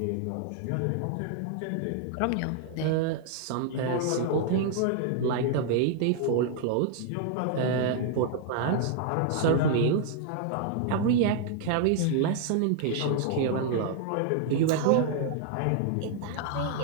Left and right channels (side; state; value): both; different; correlation 0.00